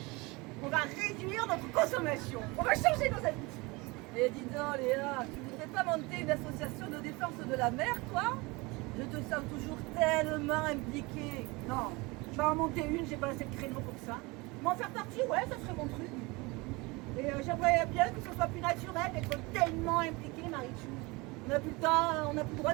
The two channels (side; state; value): left; quieter; 24.9 dB